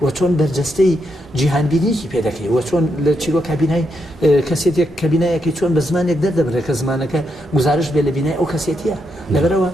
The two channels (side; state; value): both; normal; correlation 0.81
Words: وە چۆن بەرجەستەی جیهانبینیکی پێ دەکەی وە چۆن لە چیرۆ کابینای کەسێتێک کەبینایەکی چۆن بە زمانێک دەردەبرێت کە زمانەکە گزارش بێ لە بینای ئەو کەسێتیە لەبەرەوە